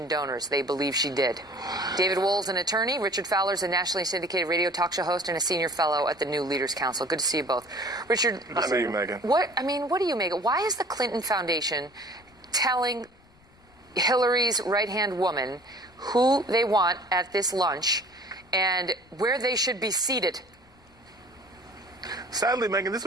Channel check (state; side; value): noise; left; rumble, 29 dB below the sound